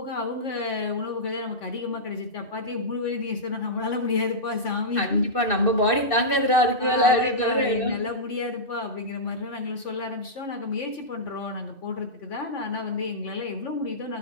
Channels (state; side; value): late; right; 2.6 ms